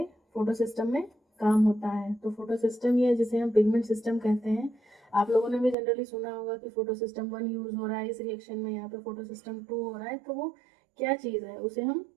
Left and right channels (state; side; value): drops out; left; at 5.8 s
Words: फोटो सिस्टम में काम होता है। तो फोटो सिस्टम ये जिसे हम पिगमेंट सिस्टम कहते हैं, आप लोगों ने भी जनरली सुना होगा कि फोटो सिस्टम 1 यूज हो रहा है इस रिएक्शन में, यहाँ पे फोटो सिस्टम 2 हो रहा है, तो वो क्या चीज़ है उसे हम